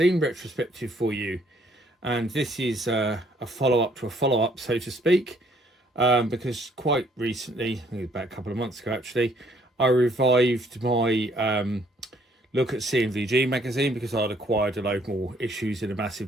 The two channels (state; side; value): normal; both; correlation 0.64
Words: retrospective for you, and this is a follow-up to a follow-up, so to speak, because quite recently, about a couple of months ago actually, I revived my look at C&VG magazine because I'd acquired a load more issues in a